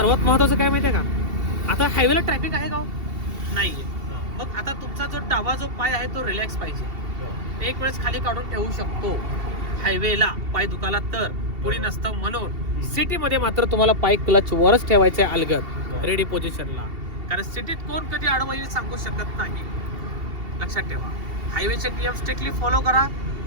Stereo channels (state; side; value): late; left; 2.7 ms